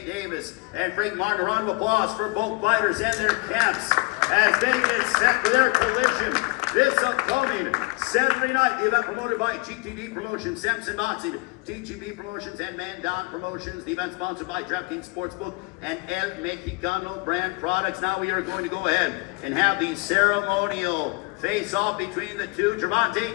Davis. And Frank Martin, a round of applause for both fighters and their camps as they get set for their collision this upcoming Saturday night. The event promoted by GTD Promotions, Samson Boxing, TGB Promotions, and Mandan Promotions. The event sponsored by DraftKings Sportsbook and El Mexicano brand products. Now we are going to go ahead and have the ceremonial face-off between the two,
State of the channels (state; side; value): quieter; right; 28.4 dB